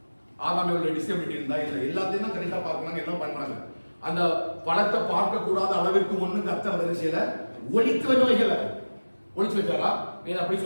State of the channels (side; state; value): both; inverted; correlation -1.00